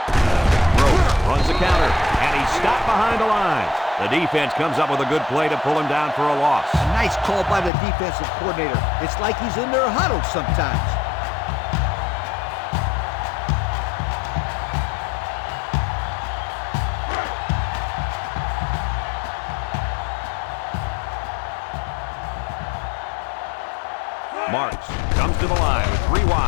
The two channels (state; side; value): drops out; right; at 7.7 s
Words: Gross runs the counter, and he's stopped behind the line. The defense comes up with a good play to pull him down for a loss. A nice call by the defensive coordinator. It's like he's in their huddle sometimes. Marks comes to the line with 3